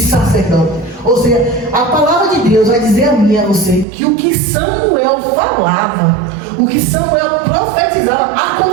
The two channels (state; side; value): drops out; left; at 3.9 s